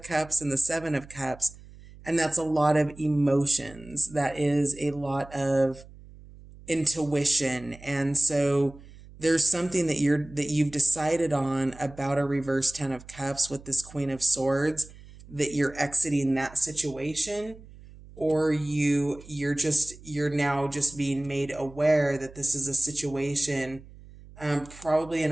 Cups and the 7 of Cups. And that's a lot of emotions. That is a lot of intuition. And so there's something that you've decided on about a reverse 10 of Cups with this Queen of Swords, that you're exiting that situation, or you're now just being made aware that this is a situation, probably in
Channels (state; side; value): noise; right; hum, 20 dB below the sound